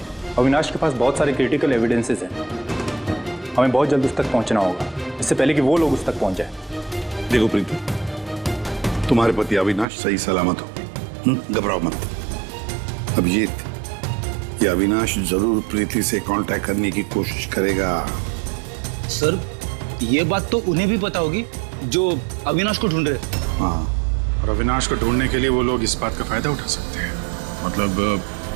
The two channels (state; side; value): drops out; left; at 9.9 s